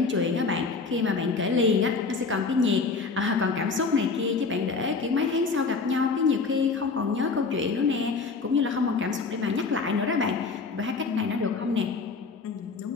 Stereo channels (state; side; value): quieter; right; 4.5 dB